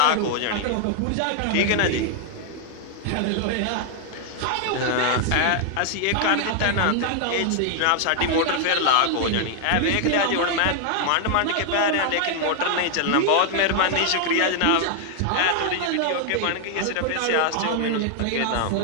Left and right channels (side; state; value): both; different; correlation 0.00